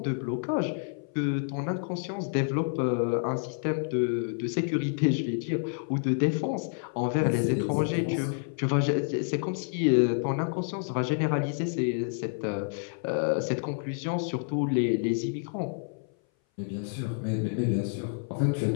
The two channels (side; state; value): right; silent; 57 dB below the other